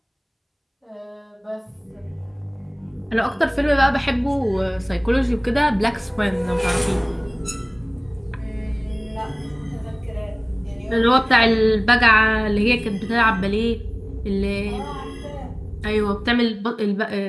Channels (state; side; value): identical; both; correlation 1.00